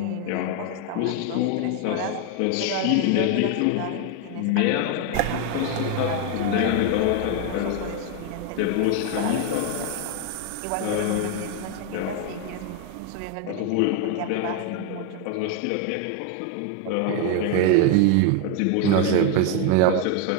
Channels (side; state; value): both; different; correlation 0.01